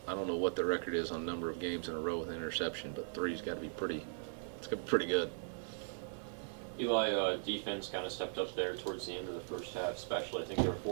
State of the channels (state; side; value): silent; left; digital silence